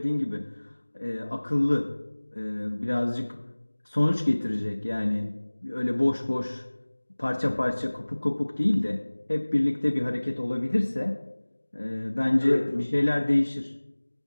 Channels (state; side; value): inverted; both; correlation -1.00